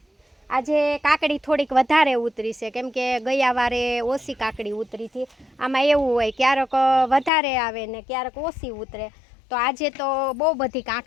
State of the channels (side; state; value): right; drops out; at 7.3 s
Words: આજે કાકડી થોડીક વધારે ઉતરી છે, કેમ કે ગયા વારે ઓછી કાકડી ઉતરી હતી. આમાં એવું હોય ક્યારેક વધારે આવે ને ક્યારેક ઓછી ઉતરે. તો આજે તો બહુ બધી